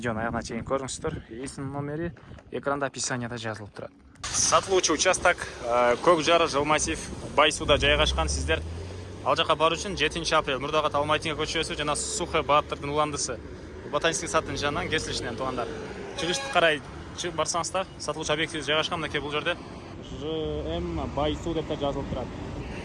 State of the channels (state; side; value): identical; both; correlation 1.00